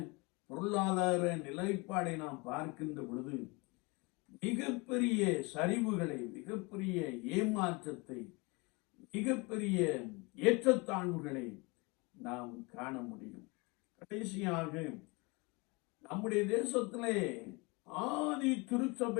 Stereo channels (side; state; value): right; quieter; 27.3 dB